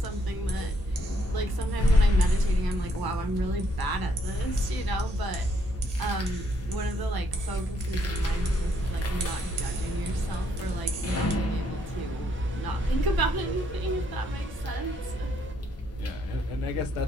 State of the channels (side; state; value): both; normal; correlation 0.71